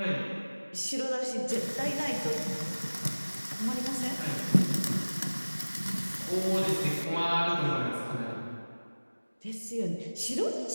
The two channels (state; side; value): inverted; both; correlation -1.00